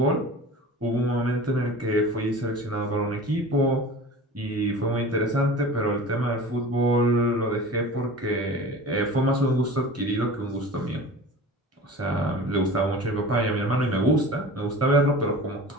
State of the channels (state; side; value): normal; both; correlation 0.37